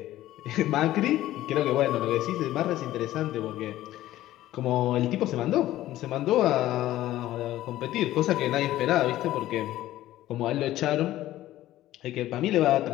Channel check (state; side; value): quieter; right; 14.7 dB